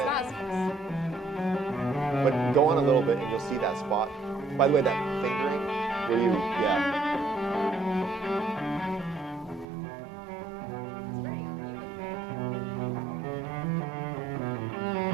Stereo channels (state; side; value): drops out; left; at 9.7 s